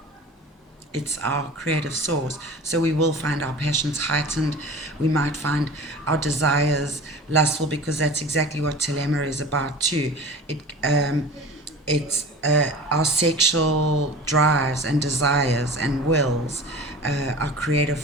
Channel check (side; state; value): both; normal; correlation 0.38